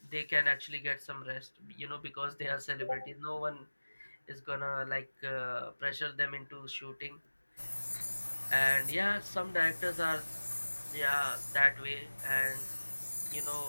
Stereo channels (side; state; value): both; inverted; correlation -1.00